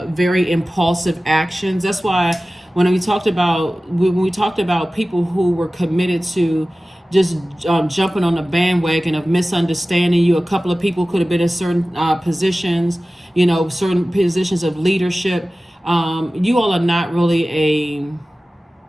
very impulsive actions. That's why when we talked about people who were committed to just jumping on the bandwagon of misunderstanding you, a couple of people could have been in certain positions, you know, certain positions of leadership. You all are not really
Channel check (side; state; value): both; normal; correlation 0.96